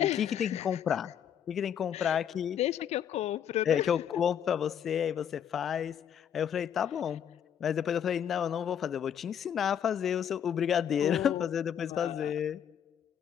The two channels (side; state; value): right; quieter; 8.8 dB